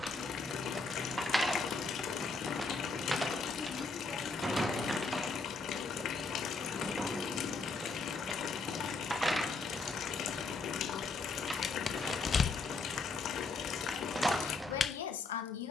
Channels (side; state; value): right; quieter; 3.9 dB